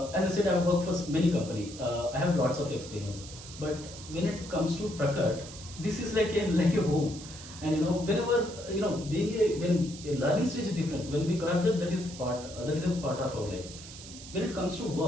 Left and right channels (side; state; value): right; noise; hiss, 14 dB below the sound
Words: as I said, I've worked for many companies. I have lots of experience. But when it comes to Prakat, this is like a home. And whenever being when a learning stage is different. When we cross that, that is a part of our life. When it comes to